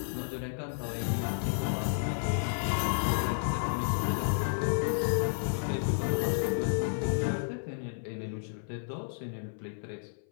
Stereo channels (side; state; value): right; silent; 57 dB below the other